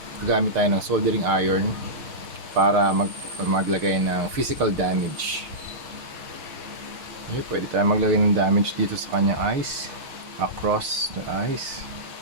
gagamit tayo ng soldering iron para maglagay ng physical damage. Okay, pwede tayo maglagay ng damage dito sa kanyang eyes, across the eyes.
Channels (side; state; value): left; late; 6.6 ms